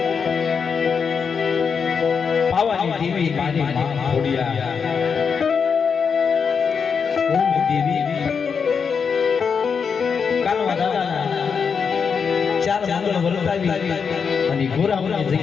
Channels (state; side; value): quieter; right; 6.1 dB